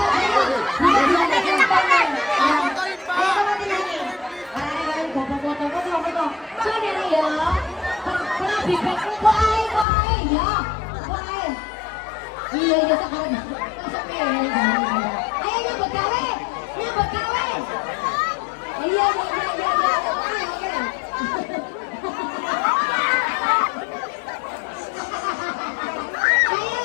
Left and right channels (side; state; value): right; drops out; at 9.9 s